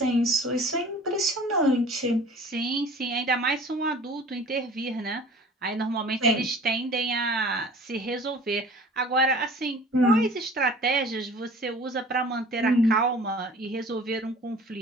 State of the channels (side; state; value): both; normal; correlation 0.45